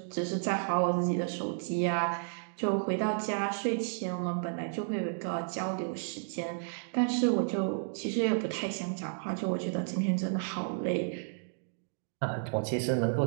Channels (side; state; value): left; silent; digital silence